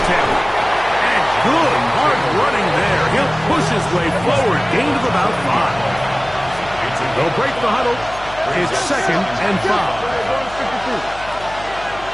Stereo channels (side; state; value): left; noise; hum, 17 dB below the sound